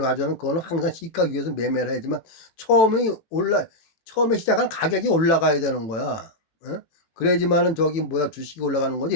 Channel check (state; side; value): late; right; 18 ms